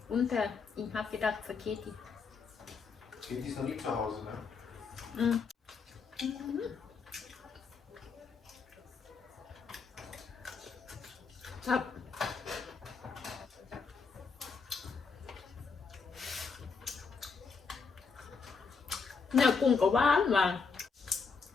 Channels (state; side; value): quieter; right; 5.1 dB